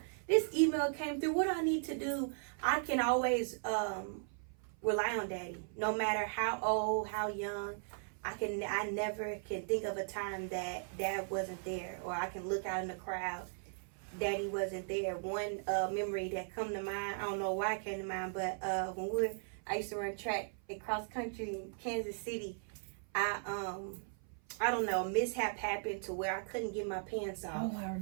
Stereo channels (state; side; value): silent; left; 53 dB below the other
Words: email came through. What do I need to do? I can always rely on Daddy, no matter how old, how young. I never can think of a time that Dad wasn't there, or I can look out in the crowd, Daddy wasn't there. One memory that come to mind, I don't know why it came to mind, but I used to run track at cross country in Kansas City. I don't know, a mishap happened to where I couldn't get my pants off. Oh, I